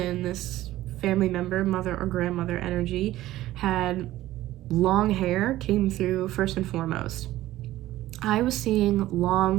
this family member, mother or grandmother energy, had long hair, came through first and foremost. I was seeing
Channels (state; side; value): quieter; left; 15.3 dB